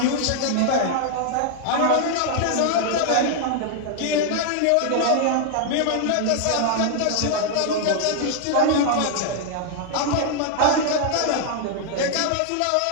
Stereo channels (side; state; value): both; different; correlation 0.00